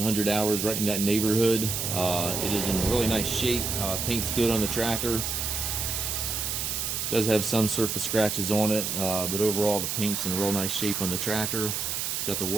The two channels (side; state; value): right; noise; hiss, 2 dB below the sound